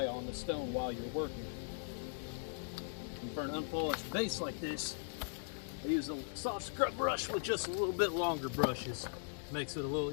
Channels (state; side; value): silent; right; digital silence